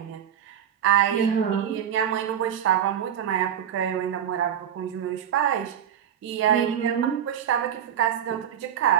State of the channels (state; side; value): quieter; left; 9.6 dB